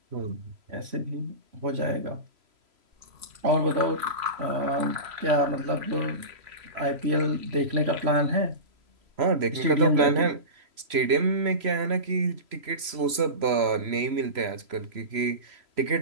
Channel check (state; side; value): late; left; 3.0 ms